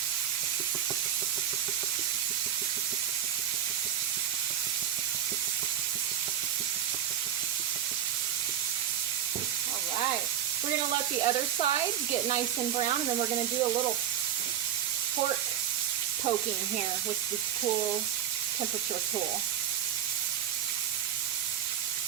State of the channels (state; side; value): quieter; left; 10.3 dB